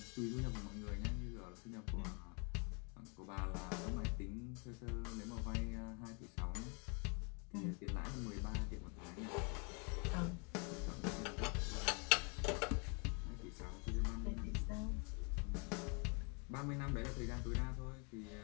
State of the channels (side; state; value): right; quieter; 35.1 dB